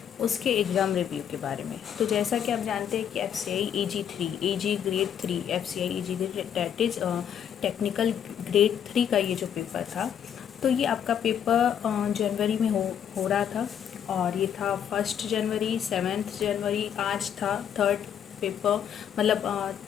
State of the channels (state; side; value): quieter; right; 8.9 dB